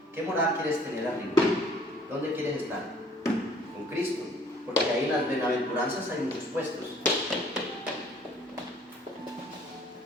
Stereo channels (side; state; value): both; normal; correlation 0.56